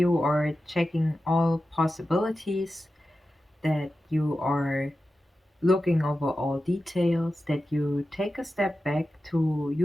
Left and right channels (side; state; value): both; normal; correlation 0.92